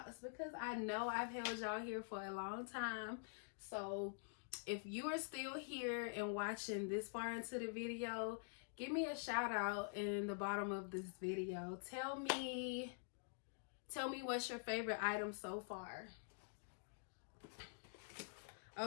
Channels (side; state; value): right; silent; digital silence